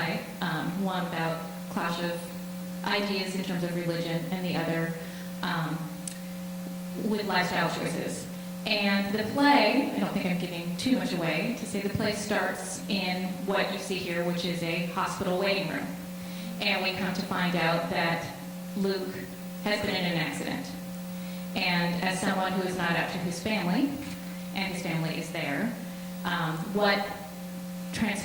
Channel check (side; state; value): both; identical; correlation 1.00